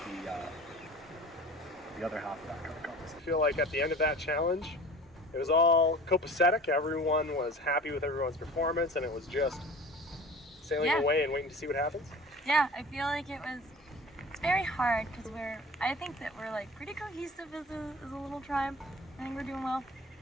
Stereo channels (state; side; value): normal; both; correlation 0.41